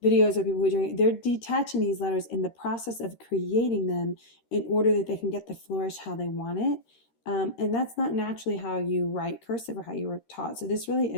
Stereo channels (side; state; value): right; late; 13 ms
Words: videos or people who are doing it, they're detaching these letters in the process of creating them in order that they can get the flourish how they want it. And that's not naturally how you write cursive or how you were taught. So this really